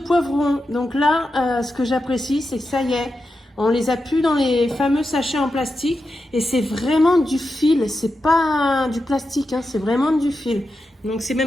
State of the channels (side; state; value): both; normal; correlation 0.89